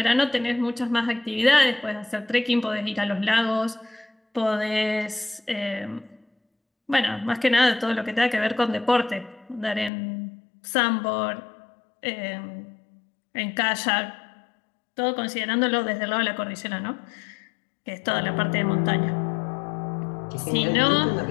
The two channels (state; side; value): drops out; right; at 9.9 s